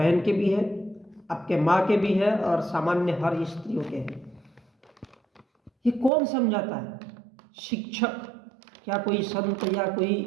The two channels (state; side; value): drops out; left; at 6.1 s